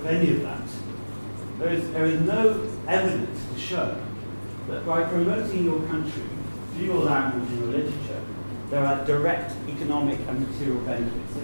any of that. There is no evidence to show that by promoting your country through your language and your literature, there are direct economic and material benefits.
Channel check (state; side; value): inverted; both; correlation -1.00